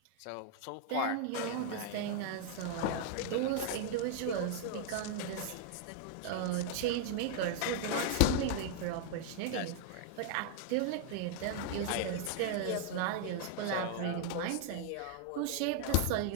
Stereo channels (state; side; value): different; both; correlation 0.00